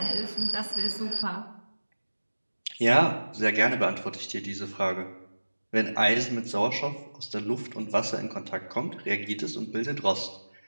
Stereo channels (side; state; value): both; inverted; correlation -1.00